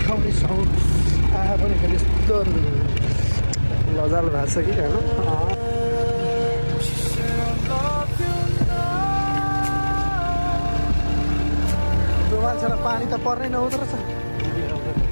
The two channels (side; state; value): both; inverted; correlation -1.00